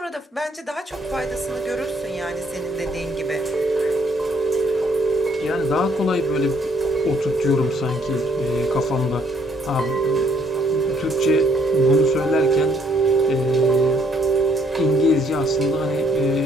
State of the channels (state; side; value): normal; both; correlation 0.66